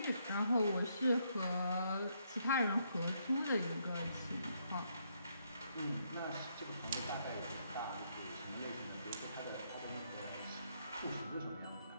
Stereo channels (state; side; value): inverted; both; correlation -0.74